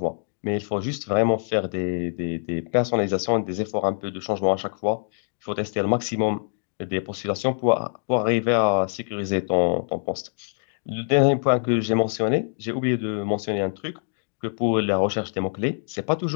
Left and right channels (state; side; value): silent; right; digital silence